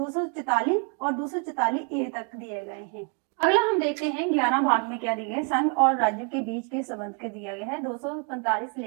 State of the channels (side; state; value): left; quieter; 37.8 dB